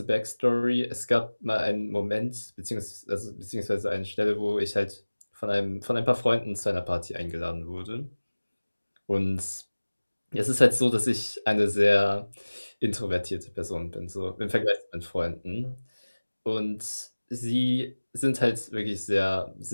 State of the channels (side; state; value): both; inverted; correlation -1.00